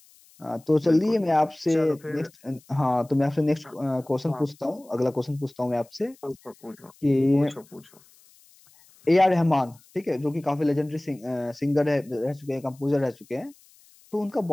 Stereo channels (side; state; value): left; noise; hiss, 28 dB below the sound